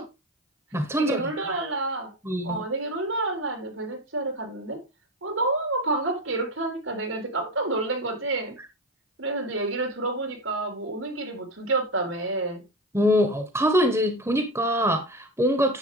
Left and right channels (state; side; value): normal; both; correlation 0.21